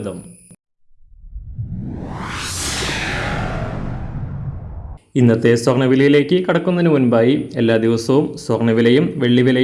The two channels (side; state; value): both; identical; correlation 1.00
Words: ഇന്നത്തെ സ്വർണ്ണവിലയിലേക്ക് കടക്കുന്നതിന് മുൻപായി എല്ലാ ദിവസവും സ്വർണ്ണവിലയും